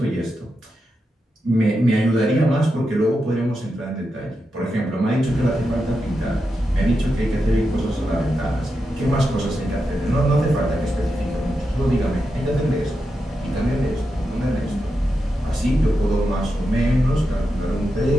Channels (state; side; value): normal; both; correlation 0.87